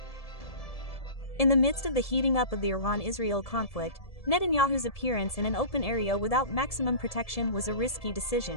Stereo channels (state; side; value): late; right; 1.7 ms